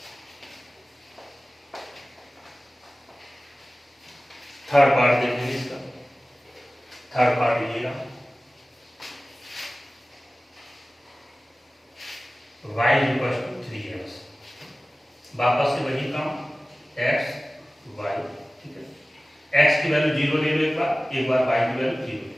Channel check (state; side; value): normal; both; correlation 0.97